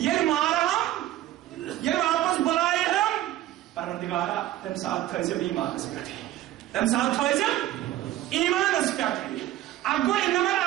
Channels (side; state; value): left; quieter; 14.2 dB